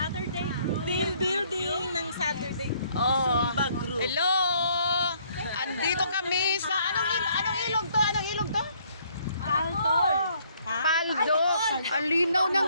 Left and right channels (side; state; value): both; inverted; correlation -0.65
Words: group. Team building ng Saturday oh. Zumba group. Hello! Andito kami sa anong ilog to? Anong ilog to? Palto. Paldo. Ang linaw ng